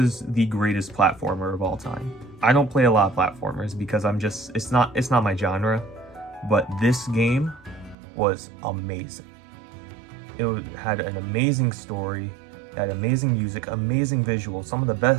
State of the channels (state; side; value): drops out; left; at 8.0 s